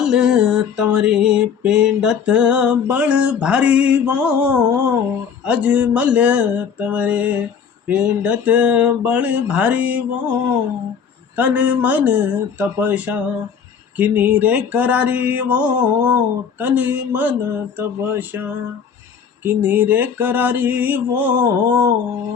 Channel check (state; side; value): quieter; right; 7.0 dB